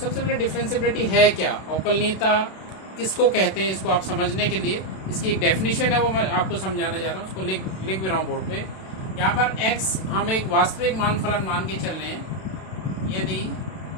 पहले डिफरेंशिबिलिटी है क्या, अवकलनीयता किसको कहते हैं, इसको आप समझने के लिए इसकी एक डेफिनेशन है, वो मैं आपको समझाना जा रहा हूँ। उसको लिख भी रहा हूँ बोर्ड पे। यहाँ पर x हम एक वास्तविक मान फलन मान के चल रहे हैं। यदि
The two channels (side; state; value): right; late; 32 ms